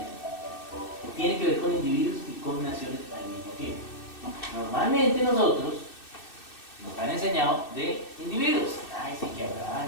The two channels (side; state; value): right; late; 2.6 ms